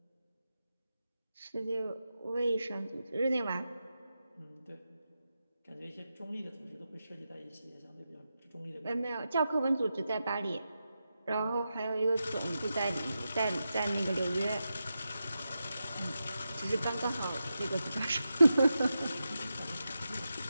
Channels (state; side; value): inverted; both; correlation -0.89